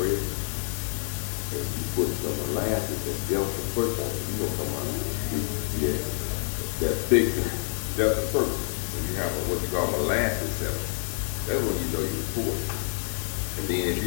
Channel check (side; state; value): right; silent; 58 dB below the other